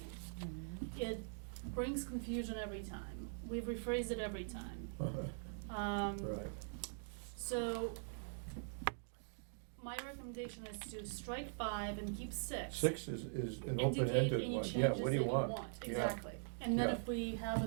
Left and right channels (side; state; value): left; silent; digital silence